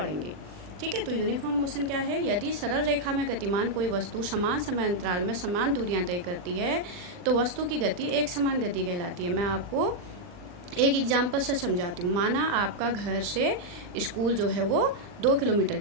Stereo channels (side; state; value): left; late; 39 ms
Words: ठीक है, तो यूनिफॉर्म मोशन क्या है? यदि सरल रेखा में गतिमान कोई वस्तु समान समय अंतराल में समान दूरियां तय करती है तो वस्तु की गति एक समान गति कहलाती है। मैं आपको एक एग्जाम्पल से समझाती हूँ। माना आपका घर से स्कूल जो है वो 2 किलोमीटर